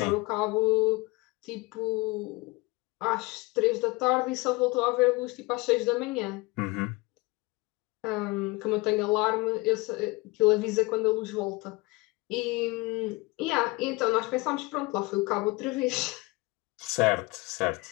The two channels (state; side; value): quieter; right; 24.1 dB